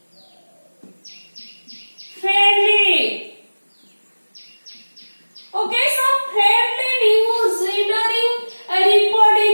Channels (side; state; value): both; inverted; correlation -1.00